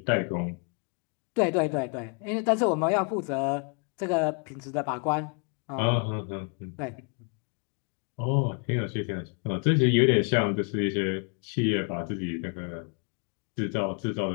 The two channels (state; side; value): quieter; right; 38.3 dB